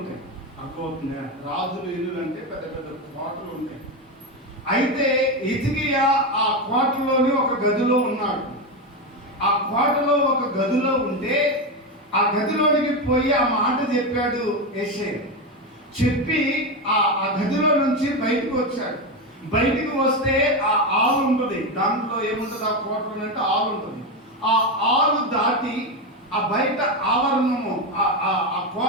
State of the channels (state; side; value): normal; both; correlation 0.13